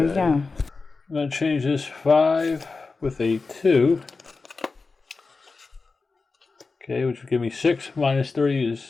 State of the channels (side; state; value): right; quieter; 4.1 dB